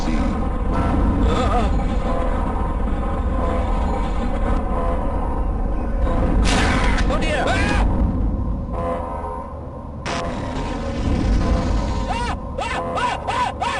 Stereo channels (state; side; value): identical; both; correlation 1.00